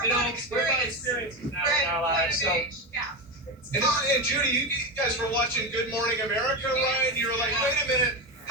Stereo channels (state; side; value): normal; both; correlation 0.17